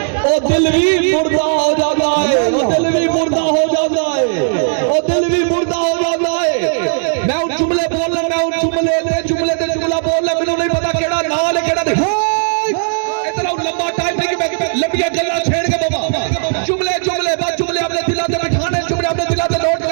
वो दिल भी मुर्दा हो जाता है, वो दिल भी मुर्दा हो जाता है, वो दिल भी मुर्दा हो जाता है। मैं उन जुमले बोल रहा, मैं उन जुमले ते जुमला बोल रहा, मैंने नहीं पता केड़ा नाल है केड़ा नहीं। इतना लंबा टाइम नहीं कि मैं लंबिया गल्ला छेड़ के बाबा जुमले बस जुमले अपने दिला ते बिठाने, जुमले अपने दिला ते नोट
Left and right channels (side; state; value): left; silent; digital silence